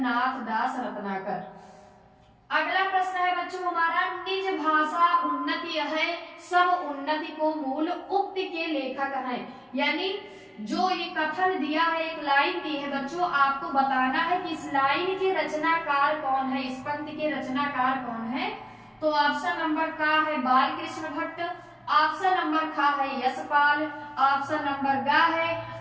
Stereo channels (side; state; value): both; identical; correlation 1.00